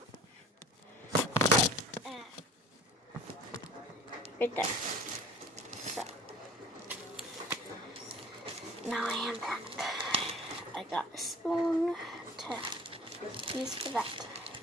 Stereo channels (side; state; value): both; normal; correlation 0.45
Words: Right there. So. Now I am back. I got a spoon to use for that.